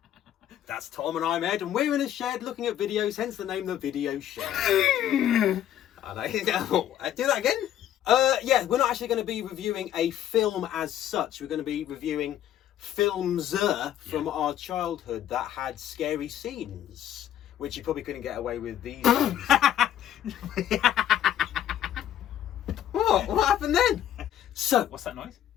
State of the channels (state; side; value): quieter; right; 11.2 dB